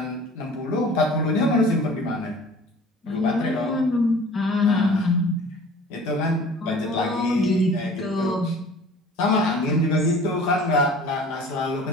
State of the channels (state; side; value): normal; both; correlation 0.46